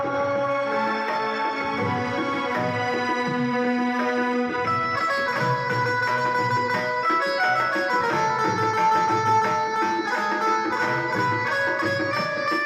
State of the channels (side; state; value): both; identical; correlation 1.00